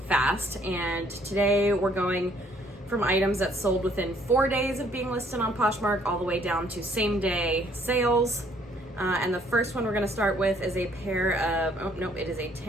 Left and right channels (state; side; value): normal; both; correlation 0.63